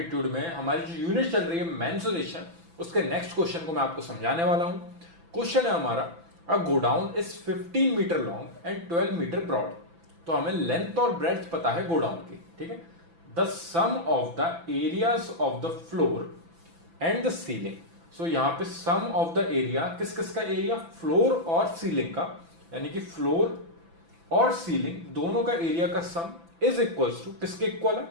में हमारी जो यूनिट चल रही है मेंसुरेशन, उसके नेक्स्ट क्वेश्चन को मैं आपको समझाने वाला हूं। क्वेश्चन है हमारा, a godown is 15 metre long and 12 metre broad. तो हमें लेंथ और ब्रेड्थ पता है गोडाउन की, ठीक है। The sum of the areas of the floor and the ceiling. So यहां पे सम ऑफ द एरिया, किस किस का एरिया, फ्लोर और सीलिंग का, यानी कि फ्लोर और सीलिंग दोनों का एरिया का सम इज इक्वल्स टू, किसके इक्वल है,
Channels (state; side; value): late; left; 6.0 ms